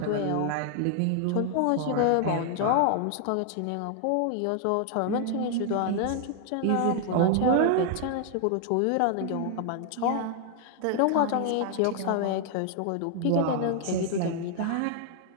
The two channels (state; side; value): different; both; correlation 0.00